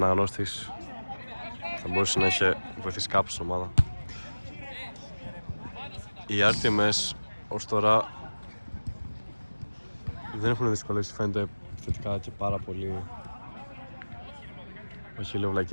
θα μπορούσε να είχε βοηθήσει κάπου στην ομάδα. Οι RTMS ως τώρα δεν έχουν δυσκολεύσει, φαίνεται θετικά και πάρα πολύ. Όχι λέω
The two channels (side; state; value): both; inverted; correlation -1.00